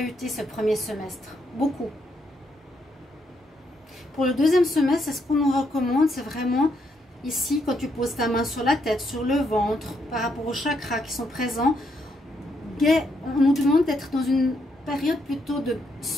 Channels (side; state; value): both; normal; correlation 0.76